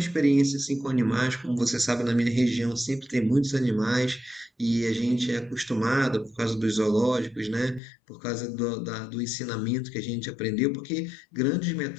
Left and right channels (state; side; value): drops out; right; at 7.8 s